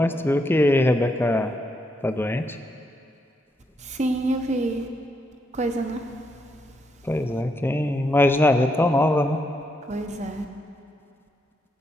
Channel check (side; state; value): both; normal; correlation 0.79